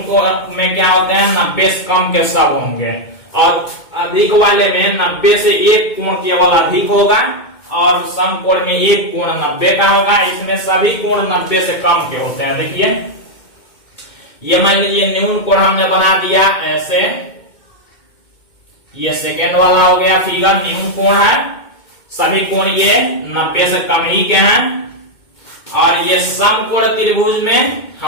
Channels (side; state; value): right; late; 2.2 ms